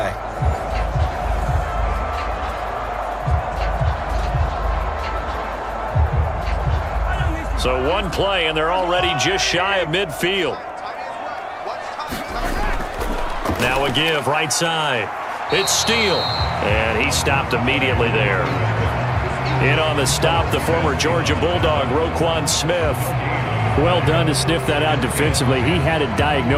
So one play, and they're already just shy of midfield. Now a give right side. It's Steele, and he stopped immediately there. In on the stop, the former Georgia Bulldog, Roquan Smith. Well done to sniff that out defensively. He had it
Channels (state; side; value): identical; both; correlation 1.00